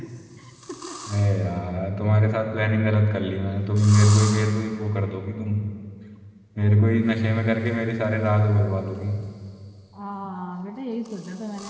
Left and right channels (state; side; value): identical; both; correlation 1.00